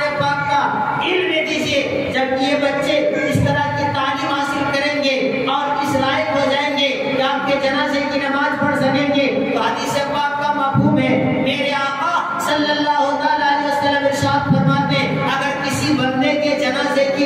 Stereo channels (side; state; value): both; identical; correlation 1.00